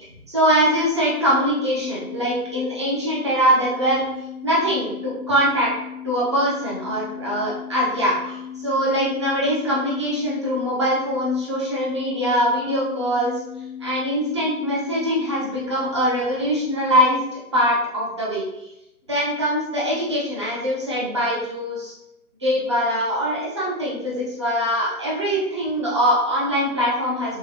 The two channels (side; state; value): both; normal; correlation 0.08